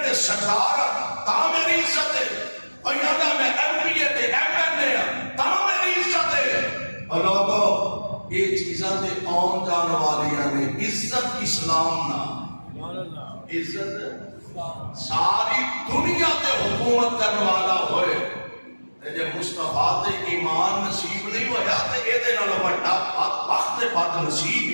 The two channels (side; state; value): both; inverted; correlation -1.00